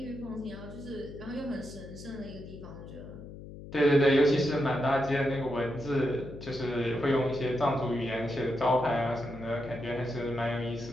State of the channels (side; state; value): left; noise; hum, 13 dB below the sound